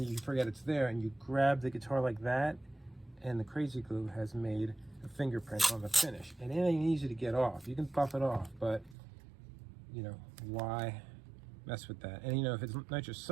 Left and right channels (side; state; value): left; drops out; at 9.0 s